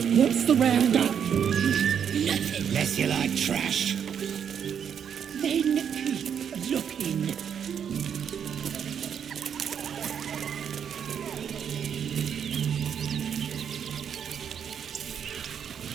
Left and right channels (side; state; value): left; quieter; 8.0 dB